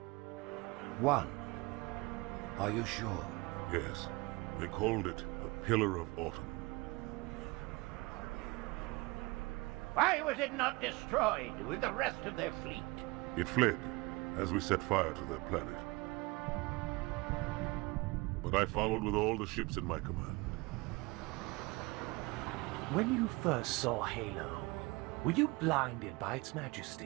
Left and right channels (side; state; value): left; quieter; 24.4 dB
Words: One? Are you sure? Yes. They called it the Pillar of Autumn. Why was it not destroyed with the rest of their fleet? It fled as we set fire to their planet. But I followed with all the ships in my command. When you first saw Halo, were you blinded by its